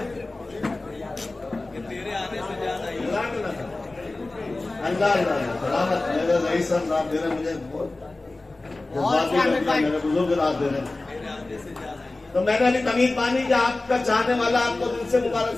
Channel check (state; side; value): quieter; right; 3.1 dB